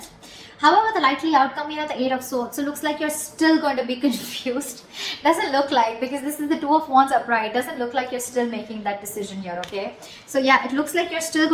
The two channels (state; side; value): identical; both; correlation 1.00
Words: However, the likely outcome here, the Eight of Swords, so looks like you're still going to be confused. Doesn't look like, because this is the Two of Wands upright, doesn't look like you're still making that decision here, okay? So yeah, it looks like you're still